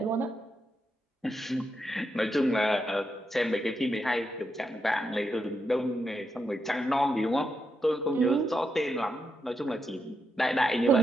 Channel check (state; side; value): normal; both; correlation 0.84